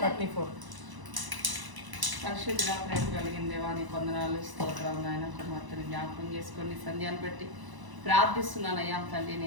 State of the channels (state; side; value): late; left; 1.0 ms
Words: పరిశుద్ధ ప్రేమ కలిగిన దేవాన్ని కొందనాలు స్తోత్రం. నాయన కుమార్తెని జ్ఞాపకం చేసుకొని సంధ్యాన్ని బట్టి ప్రార్థిస్తున్నాను. అయ్యా తండ్రి,